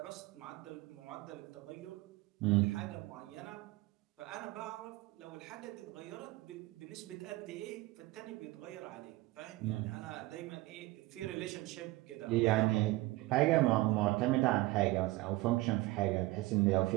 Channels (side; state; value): left; quieter; 19.3 dB